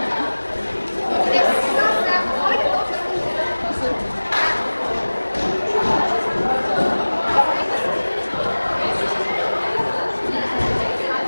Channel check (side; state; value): both; inverted; correlation -1.00